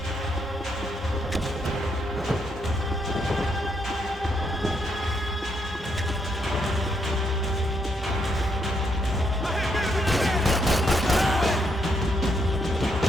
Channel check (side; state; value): both; normal; correlation 0.76